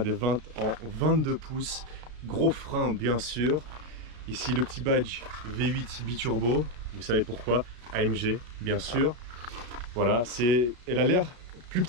des 20 en 22 pouces, gros frein bien sûr. Ici le petit badge V8 biturbo, vous savez pourquoi, AMG bien sûr. Voilà, elle a l'air plus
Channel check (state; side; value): late; left; 33 ms